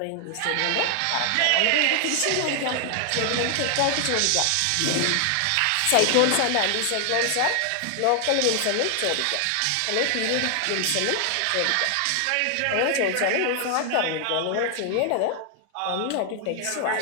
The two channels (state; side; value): different; both; correlation 0.00